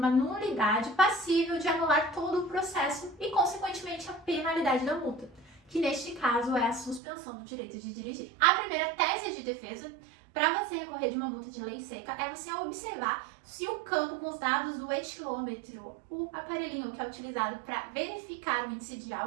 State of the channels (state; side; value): drops out; left; at 7.0 s